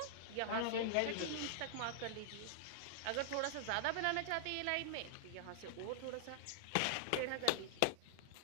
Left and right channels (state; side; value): different; both; correlation -0.01